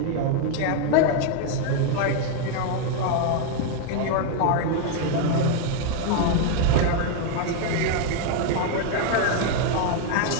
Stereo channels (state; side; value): different; both; correlation 0.00